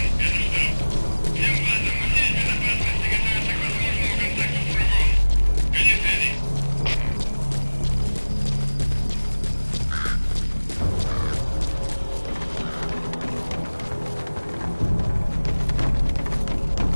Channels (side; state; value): both; inverted; correlation -1.00